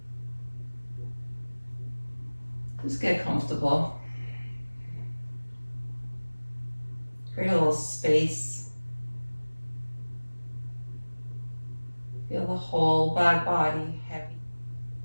Just get comfortable. Create a little space.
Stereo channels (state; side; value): inverted; both; correlation -1.00